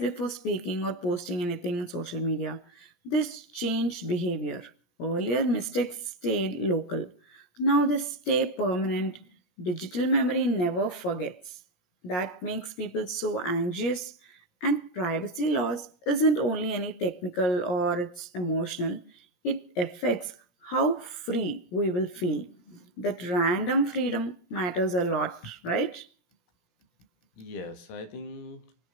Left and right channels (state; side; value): late; right; 17 ms